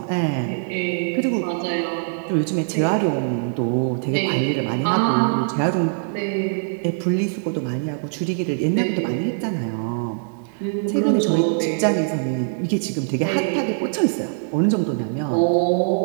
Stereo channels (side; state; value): left; silent; digital silence